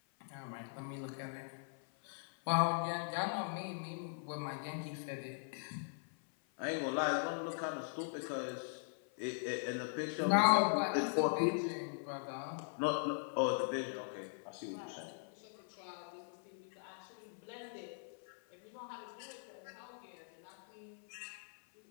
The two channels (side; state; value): right; silent; 51 dB below the other